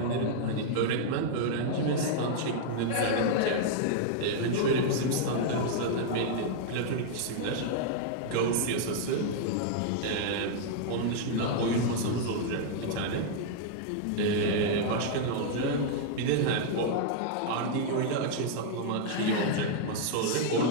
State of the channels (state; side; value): different; both; correlation -0.01